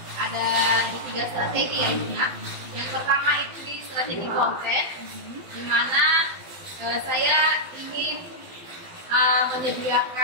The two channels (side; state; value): left; late; 12 ms